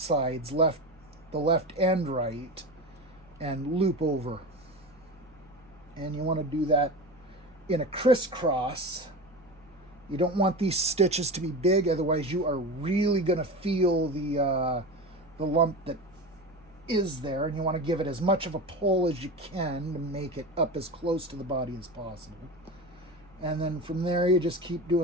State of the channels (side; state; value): right; noise; hum, 28 dB below the sound